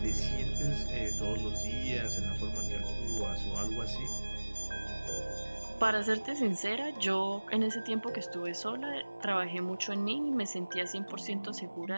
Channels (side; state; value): both; inverted; correlation -1.00